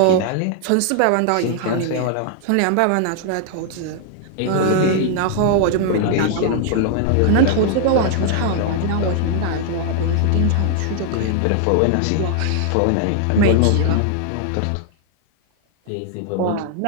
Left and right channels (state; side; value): different; both; correlation 0.00